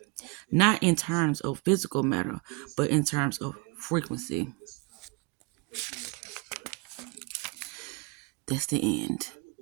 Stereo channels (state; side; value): quieter; left; 27.8 dB